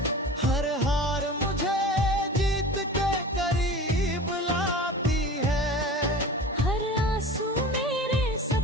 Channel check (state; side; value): normal; both; correlation 0.36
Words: हर हार मुझे जीत के करीब लाती है। हर आंसू मेरे